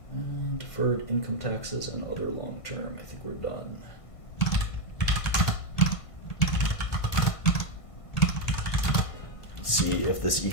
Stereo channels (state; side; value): late; right; 1.5 ms